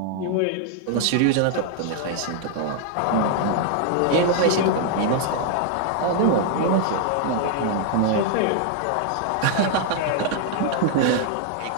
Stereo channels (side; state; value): both; different; correlation 0.00